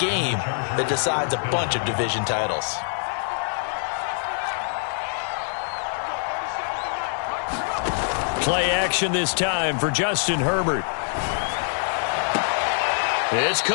game that decides a bunch of division titles? Play action this time for Justin Herbert. It's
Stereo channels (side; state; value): right; silent; digital silence